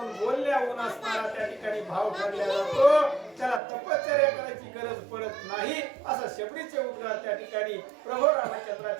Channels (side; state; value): left; drops out; at 3.6 s